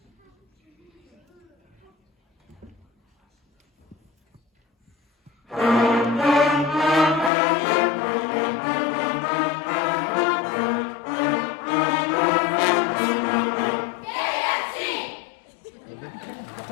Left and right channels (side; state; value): right; drops out; at 7.3 s